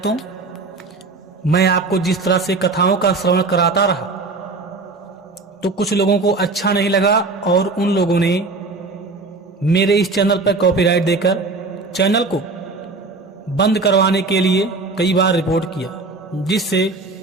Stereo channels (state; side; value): quieter; left; 3.7 dB